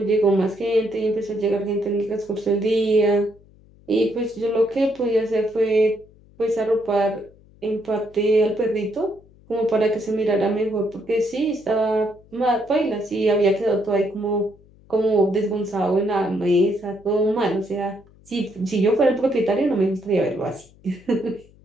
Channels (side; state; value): left; noise; hum, 27 dB below the sound